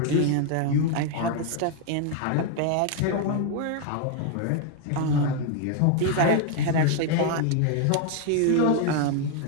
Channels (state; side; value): different; both; correlation 0.01